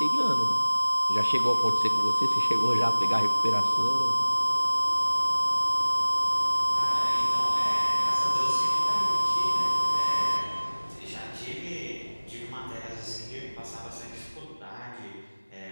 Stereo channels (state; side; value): inverted; both; correlation -1.00